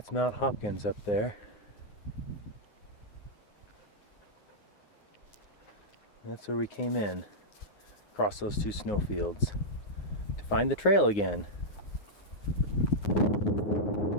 Mount Hopkins up there. That's where we came in, across those two snowfields, to find the trail again.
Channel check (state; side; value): late; right; 9.6 ms